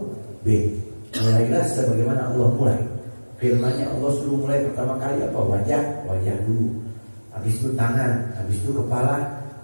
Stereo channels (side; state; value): both; inverted; correlation -1.00